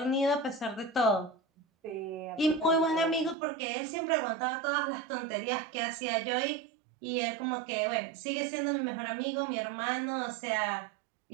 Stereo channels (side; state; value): left; drops out; at 3.4 s